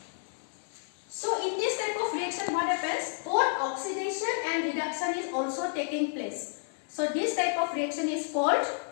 So in this type of reaction, what happens? Both oxidation and reduction is also taking place. So this type of reaction is called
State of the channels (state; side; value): silent; right; digital silence